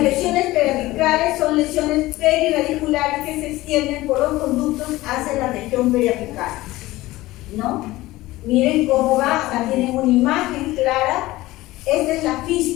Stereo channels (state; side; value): quieter; right; 18.1 dB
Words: lesiones periapicales son lesiones periradiculares que se extienden por los conductos hacia la región periapical, ¿no? Miren cómo va, acá tienen una imagen clara. Esta es la